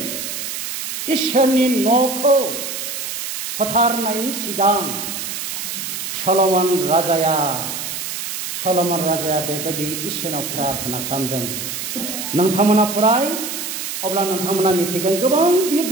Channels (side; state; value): right; noise; hiss, 5 dB below the sound